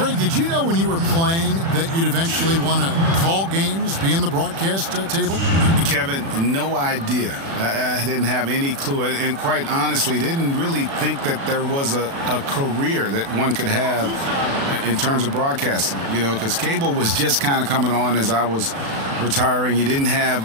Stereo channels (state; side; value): late; left; 36 ms